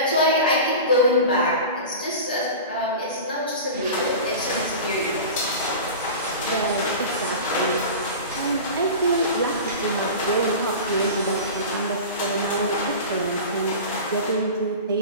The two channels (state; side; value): inverted; both; correlation -0.32